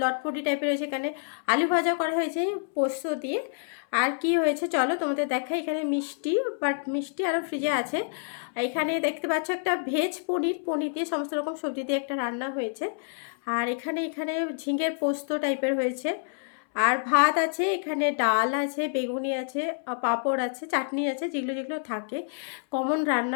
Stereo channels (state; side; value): silent; right; 60 dB below the other